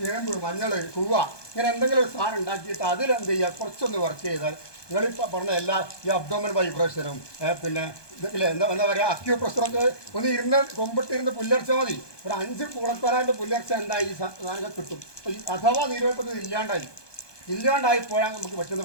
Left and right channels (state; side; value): late; right; 1.2 ms